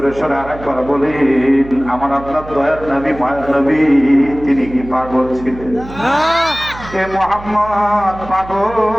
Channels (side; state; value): right; noise; hum, 15 dB below the sound